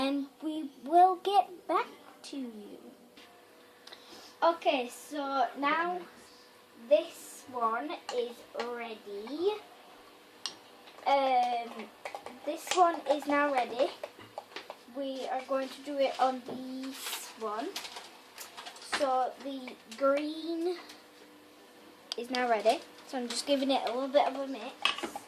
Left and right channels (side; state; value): both; identical; correlation 1.00